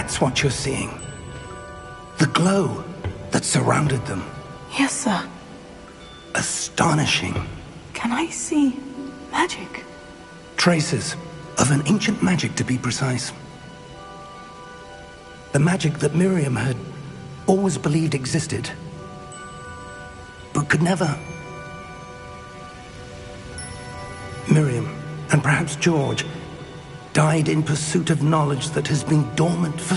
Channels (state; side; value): identical; both; correlation 1.00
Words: what you're seeing. The glow that surrounded them. Yes, sir. Astonishing. Can I see magic? Traces of an ancient magic, to be precise. The magic that Miriam had always believed existed, but could never. Miriam, and perhaps George, died in pursuit of knowledge that has been dormant for